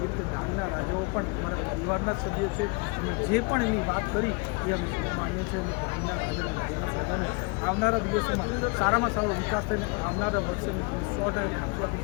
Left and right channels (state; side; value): quieter; right; 30.6 dB